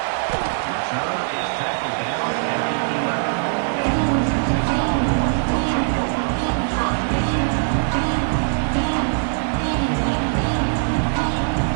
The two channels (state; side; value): silent; left; 65 dB below the other